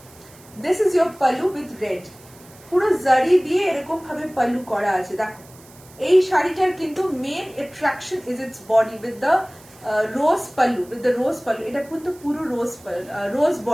this is your pallu with red. পুরো জারি দিয়ে এরকম ভাবে পাল্লু করা আছে। দেখো এই শাড়িটার কিন্তু main attraction is its body with the rose pallu, with the rose pallu. এটা কিন্তু পুরো রোজ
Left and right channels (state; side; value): noise; right; hiss, 24 dB below the sound